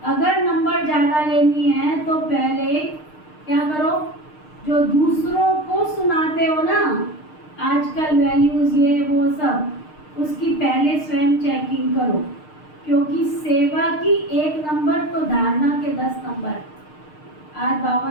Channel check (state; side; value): late; right; 6.6 ms